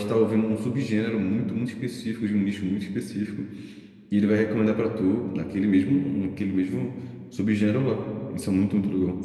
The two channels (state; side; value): identical; both; correlation 1.00